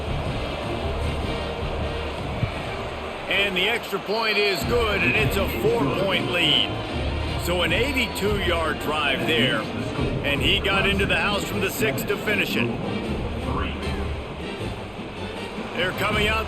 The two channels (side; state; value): both; identical; correlation 1.00